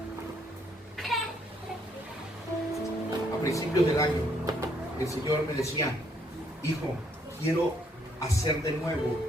a principios del año, el Señor me decía, hijo, quiero hacer de nuevo,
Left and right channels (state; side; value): normal; both; correlation 0.69